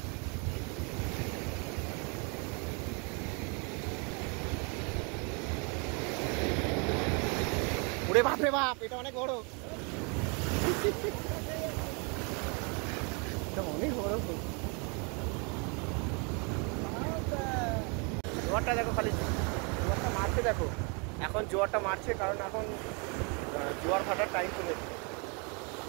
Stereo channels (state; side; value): quieter; left; 34.0 dB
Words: ওরে বাপ রে বাপ, এটা অনেক বড়, এটা অনেক বড়। জোয়ারটা দেখো, খালি জোয়ারটা মারছে দেখো, এখন জোয়ারটা মারছে কারণ এখন জোয়ার ভাটার টাইম চলে এসেছে।